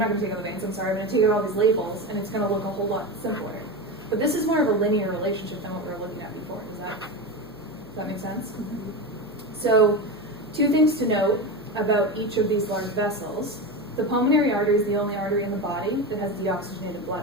going to take out the veins, I'm sorry, I'm going to take out all these labels, and it's going to look a whole lot simpler. But this is more of a linear relationship than what we were looking at before. Does that make sense? Mm-hmm. So, two things to note about each of these large vessels. The pulmonary artery is the only artery in the body that has deoxygenated blood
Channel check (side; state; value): left; noise; hum, 25 dB below the sound